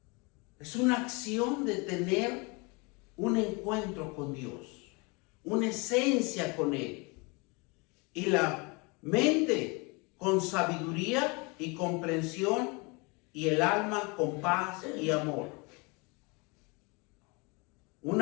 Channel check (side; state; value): right; quieter; 29.0 dB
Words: Es una acción de tener un encuentro con Dios, una esencia con Él. Y la mente con sabiduría y comprensión, y el alma con paz y amor.